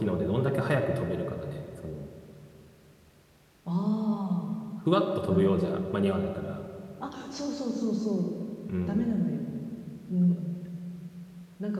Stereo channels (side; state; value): both; identical; correlation 1.00